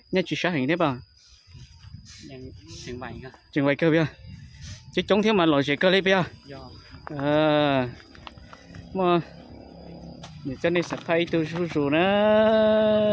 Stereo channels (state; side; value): identical; both; correlation 1.00